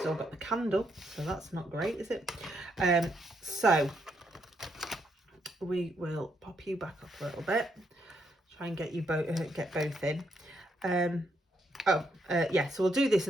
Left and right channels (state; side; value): normal; both; correlation 0.77